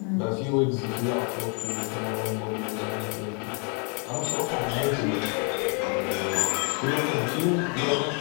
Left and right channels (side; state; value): right; quieter; 37.9 dB